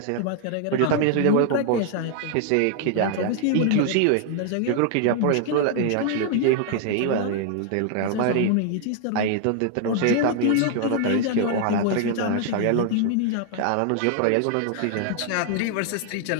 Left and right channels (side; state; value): both; different; correlation 0.00